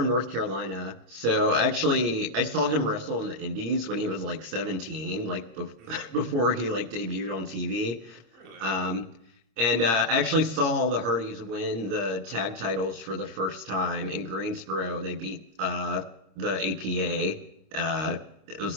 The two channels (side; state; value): left; late; 26 ms